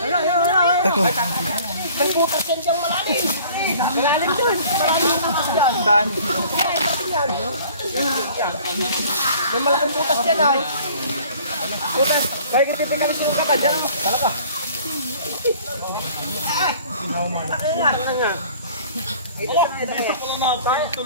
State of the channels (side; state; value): both; inverted; correlation -0.50